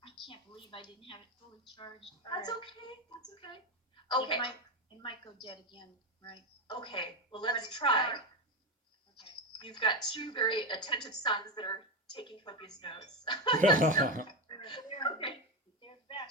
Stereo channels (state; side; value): normal; both; correlation 0.14